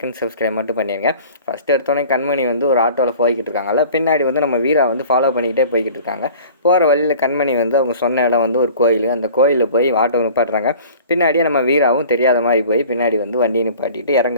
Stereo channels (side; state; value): both; inverted; correlation -0.46